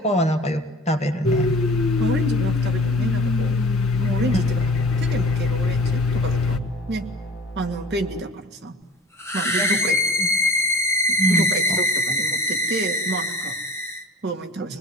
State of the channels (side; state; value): both; normal; correlation 0.42